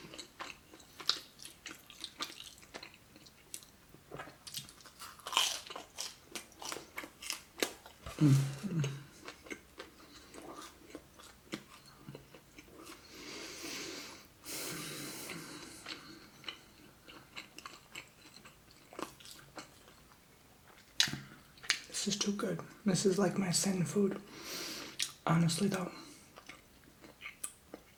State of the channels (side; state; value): both; identical; correlation 1.00